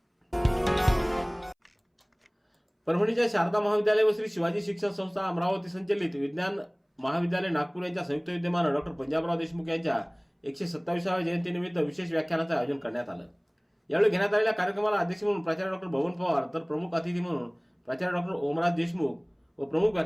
परभणीच्या शारदा महाविद्यालय व श्री शिवाजी शिक्षण संस्था अमरावती संचलित विज्ञान महाविद्यालय नागपूर यांच्या संयुक्त विद्यमानं डॉक्टर पंजाबराव देशमुख यांच्या 127व्या जयंतीनिमित्त विशेष व्याख्यानाचं आयोजन करण्यात आलं. यावेळी घेण्यात आलेल्या कार्यक्रमाला अध्यक्ष म्हणून प्राचार्य डॉक्टर भवन पवार, तर प्रमुख अतिथी म्हणून प्राचार्य डॉक्टर ओमराज देशमुख व प्रमुख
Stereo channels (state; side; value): identical; both; correlation 1.00